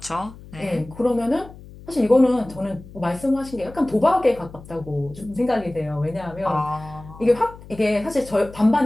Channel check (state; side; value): noise; left; hum, 18 dB below the sound